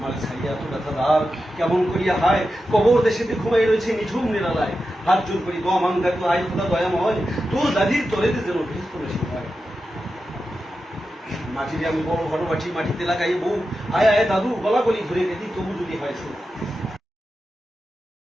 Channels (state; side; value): normal; both; correlation 0.91